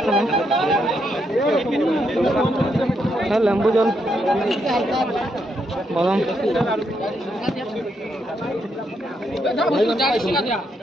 है लेम्बू जल बादाम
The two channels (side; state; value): both; normal; correlation 0.78